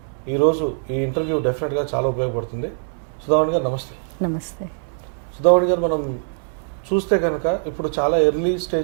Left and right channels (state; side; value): silent; left; digital silence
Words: ఈరోజు ఈ ఇంటర్వ్యూ డెఫినెట్గా చాలా ఉపయోగపడుతుంది. సుధావాణి గారు నమస్తే. నమస్తే. సుధావాణి గారు, మనం చూస్తే కనుక ఇప్పుడు చాలా ఎర్లీ